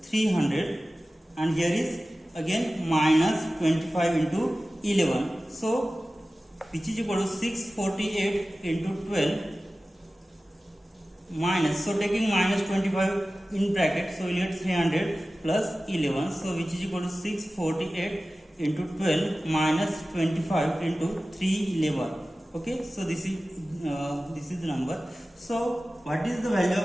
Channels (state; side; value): normal; both; correlation 0.96